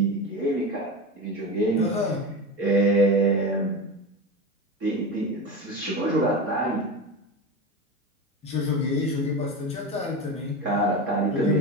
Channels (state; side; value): normal; both; correlation 0.23